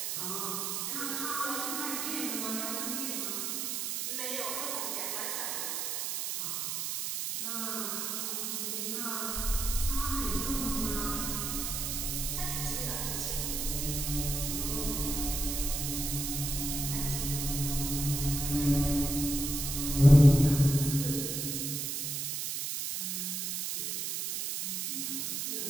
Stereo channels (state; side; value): noise; right; hiss, 2 dB below the sound